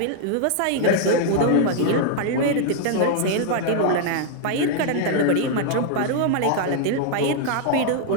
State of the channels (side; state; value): both; different; correlation 0.00